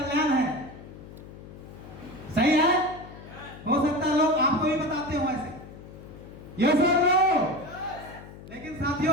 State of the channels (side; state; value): left; noise; hum, 16 dB below the sound